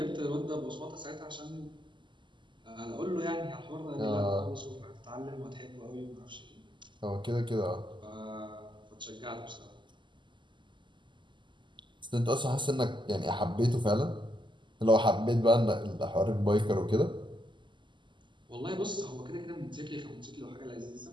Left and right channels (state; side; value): late; left; 0.23 ms